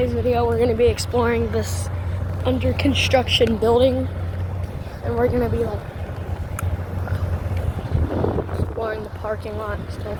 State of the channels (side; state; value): both; identical; correlation 1.00